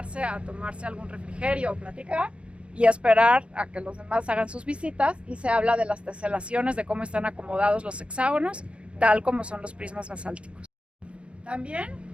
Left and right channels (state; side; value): late; left; 0.059 ms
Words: a tomarse algún refrigerio o platicar y esperar a que los demás hagan sus visitas, y se habla de las teselaciones, de cómo están acomodados los hexágonos, tal como son los prismas basálticos. También